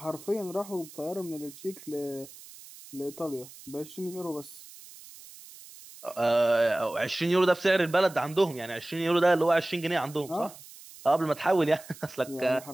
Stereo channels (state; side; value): noise; right; hiss, 18 dB below the sound